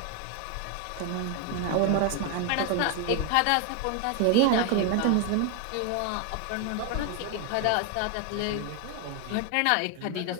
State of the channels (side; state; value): both; different; correlation 0.01